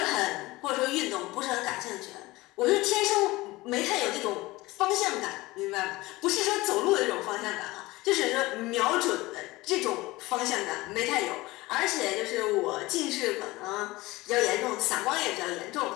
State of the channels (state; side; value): quieter; right; 20.3 dB